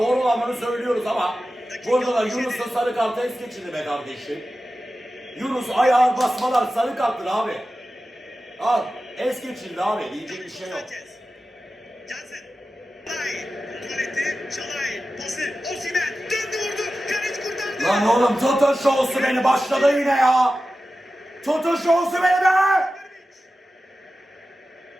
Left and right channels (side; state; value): both; normal; correlation 0.94